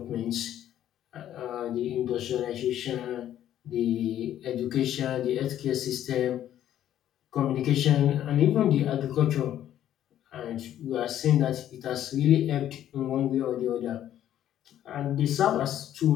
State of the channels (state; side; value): quieter; right; 11.5 dB